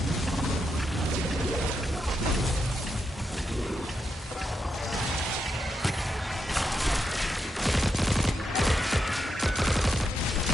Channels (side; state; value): both; normal; correlation 0.84